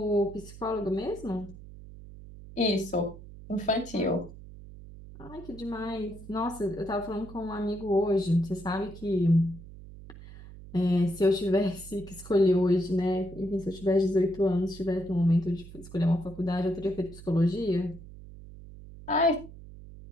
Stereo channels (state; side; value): noise; right; hum, 16 dB below the sound